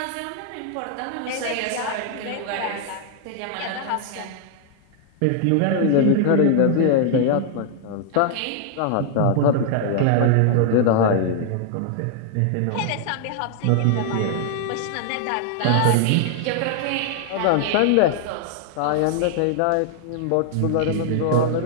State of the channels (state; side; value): different; both; correlation 0.00